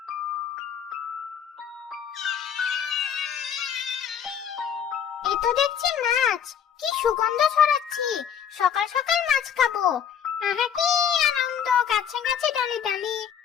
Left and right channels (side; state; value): right; quieter; 8.3 dB